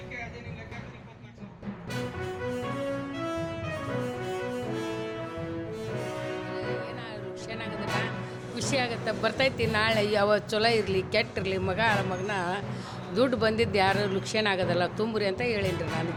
ಅದೇನಿಲ್ಲ ಲೆಕ್ಕ 24,000. ಖುಷಿ ಆಗುತ್ತೆ, ಬರ್ತೈತಿ. ನಾಳೆ ಯಾವ ಚಲೋ ಇರಲಿ ಕೆಟ್ಟಿರಲಿ, ಮಗನ ದುಡ್ಡು ಬಂದಿದ್ದು ಯಾರು ಲುಕ್ಷೇನ ಆಗೋದಲ್ಲ, ತುಂಬ್ರಿ ಅಂತ ಹೇಳೀನಿ ನಾನು.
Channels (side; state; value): both; identical; correlation 1.00